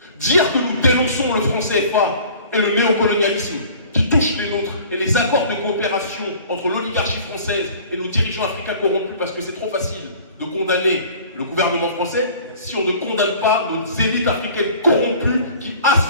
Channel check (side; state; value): both; inverted; correlation -0.47